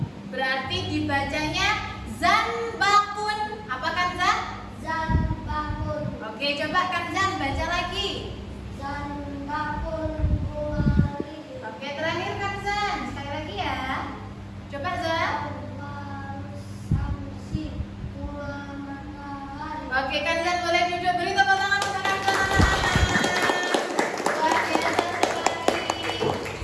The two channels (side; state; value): both; identical; correlation 1.00